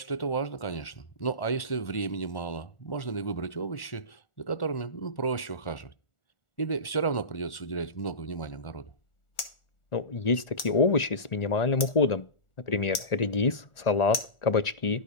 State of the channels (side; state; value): right; late; 1.4 ms